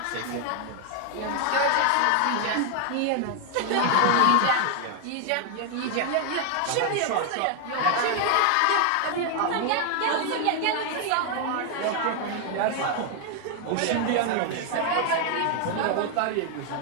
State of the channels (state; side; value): different; both; correlation 0.00